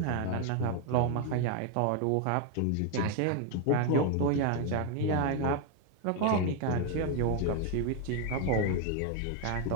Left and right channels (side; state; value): both; different; correlation 0.01